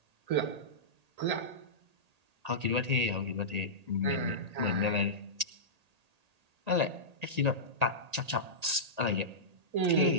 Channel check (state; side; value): late; left; 1.8 ms